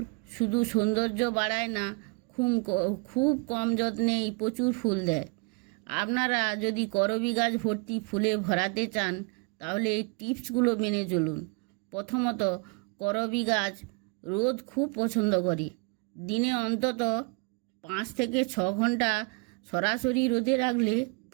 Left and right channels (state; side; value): quieter; left; 33.9 dB